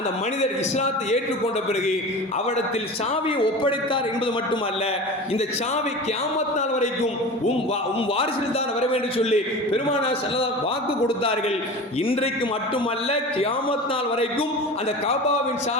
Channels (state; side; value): normal; both; correlation 0.33